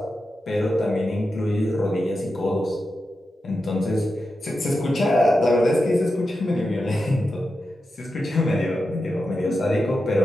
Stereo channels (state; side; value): normal; both; correlation 0.90